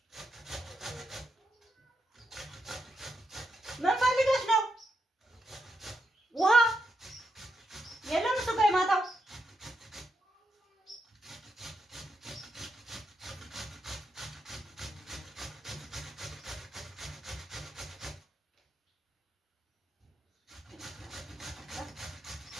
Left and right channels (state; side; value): normal; both; correlation 0.83